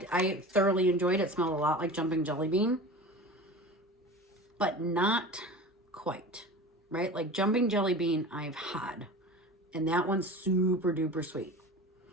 thoroughly enjoyed. It smelled a lot like Jumping Jelly Bean, but not quite, right? Like Jumping Jelly Bean I've had, and that one's super duper sweet.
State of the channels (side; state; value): both; normal; correlation 0.35